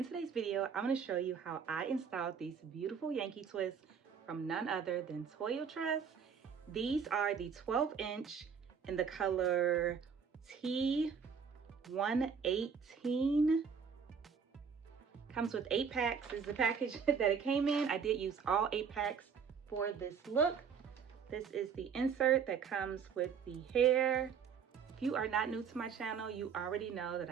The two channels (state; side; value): quieter; left; 6.6 dB